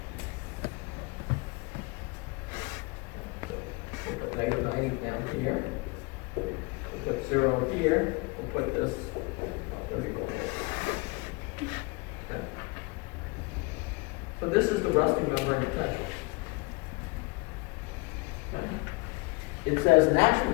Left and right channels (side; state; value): right; quieter; 26.5 dB